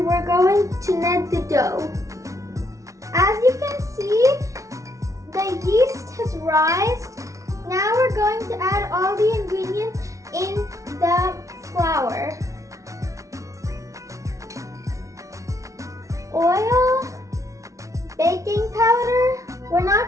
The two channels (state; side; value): late; left; 0.15 ms